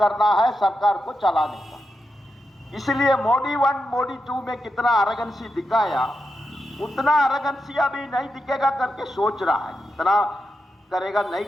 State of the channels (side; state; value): both; normal; correlation 0.87